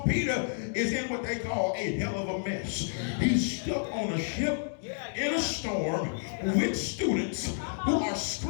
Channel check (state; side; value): silent; right; digital silence